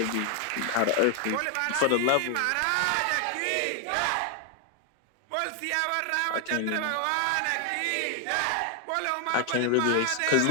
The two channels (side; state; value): both; different; correlation 0.00